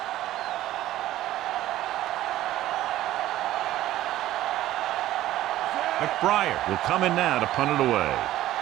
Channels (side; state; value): left; quieter; 14.4 dB